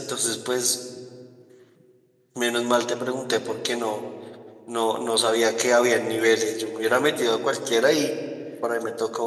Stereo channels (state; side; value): identical; both; correlation 1.00